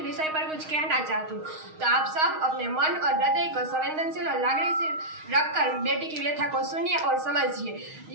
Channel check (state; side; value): late; left; 6.4 ms